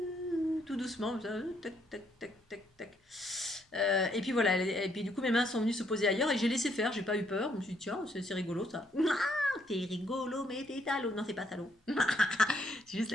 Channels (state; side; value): normal; both; correlation 0.71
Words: Tout doucement, tac, tac, tac, tac, tac. Et puis voilà, et puis du coup mes mains sont venues se poser ailleurs et j'ai laissé faire, j'ai pas eu peur, je me suis dit tiens, c'est rigolo ça. T'es rigolo, mais t'es salaud. Non, c'est pas salaud. C'est juste